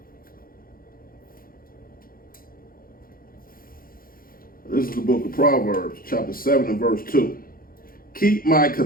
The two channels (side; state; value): right; late; 0.42 ms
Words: This is the book of Proverbs, chapter 7 and verse 2. Keep my